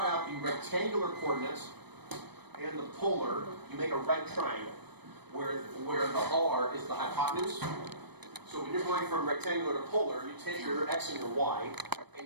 out the rectangular coordinates and the polar, you make a right triangle, where the r is the hypotenuse. So when you're going from rectangular to polar, you take your x and your y,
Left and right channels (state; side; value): late; left; 0.98 ms